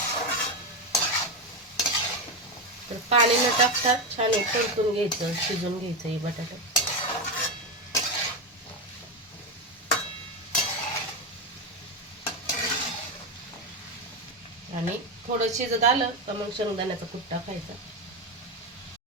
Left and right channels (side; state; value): both; normal; correlation 0.12